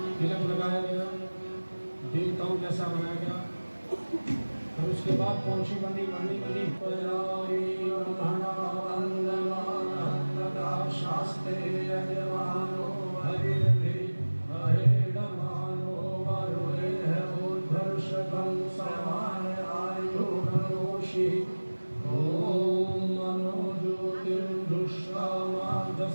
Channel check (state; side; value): inverted; both; correlation -1.00